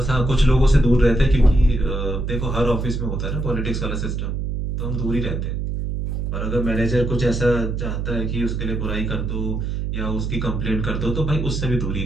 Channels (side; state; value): right; noise; hum, 2 dB below the sound